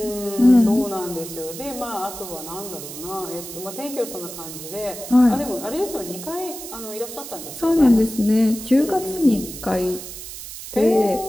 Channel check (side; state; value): right; noise; hiss, 11 dB below the sound